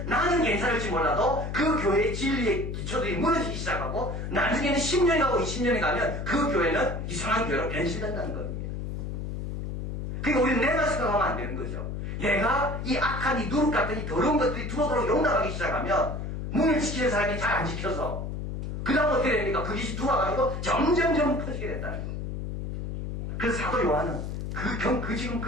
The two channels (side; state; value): left; noise; hum, 4 dB below the sound